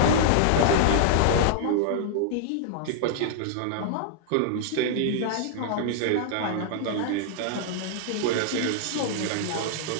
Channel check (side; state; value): both; different; correlation -0.01